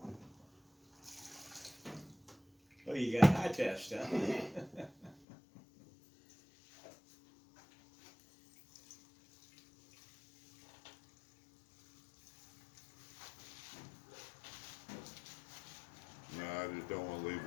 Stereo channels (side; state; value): right; drops out; at 5.2 s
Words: Oh, you got high test, huh? No, I just don't want to leave